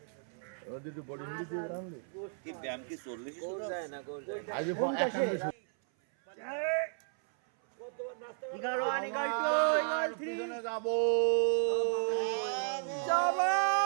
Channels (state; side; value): silent; left; 55 dB below the other